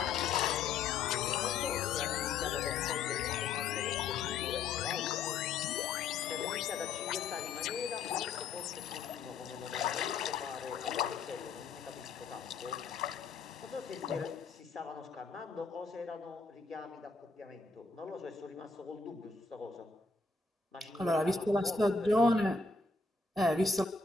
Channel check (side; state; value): right; quieter; 4.5 dB